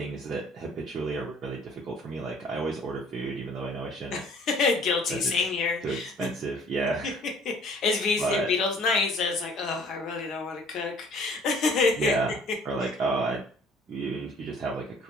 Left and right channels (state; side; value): normal; both; correlation 0.54